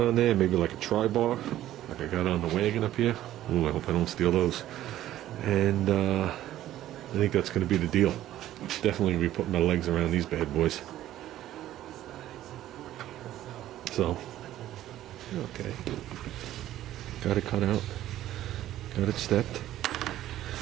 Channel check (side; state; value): left; quieter; 13.3 dB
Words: there, maybe like a tri-bar, like I got on the wagon up here. Ooh, I hope I don't steal those. And I think that's going to be the deal. Definitely going to be putting my legs around these bad boys. So, okay. Got it cut out. Got it stepped.